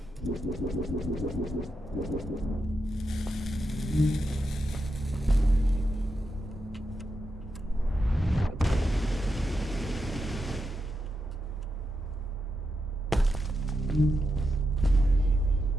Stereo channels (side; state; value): both; normal; correlation 0.86